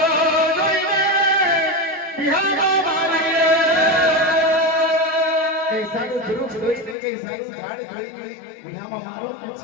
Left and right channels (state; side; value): drops out; right; at 7.0 s